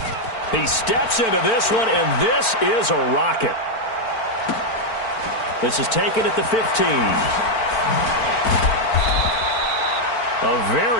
He steps into this one, and this is a rocket. This is taken at the 15. A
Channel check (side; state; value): right; late; 4.5 ms